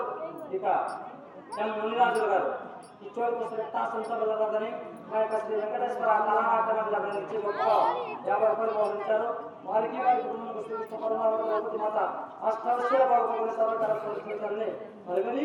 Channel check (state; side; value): identical; both; correlation 1.00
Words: ఇక ఎం మునిరాజులు గారు ఈ చోటు సంతలని మా యొక్క శ్రీ వెంకటేశ్వర కళానాట్యమండలించి గొప్ప 50 రూపాయలు పంపించారు. వారికి వారి కుటుంబానికి మాత అష్టవశ్య బాగుపడిన సర్వకారాన్ని మరి మరీ